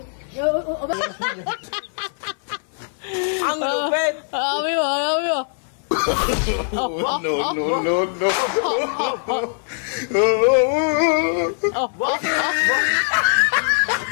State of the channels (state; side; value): silent; right; 57 dB below the other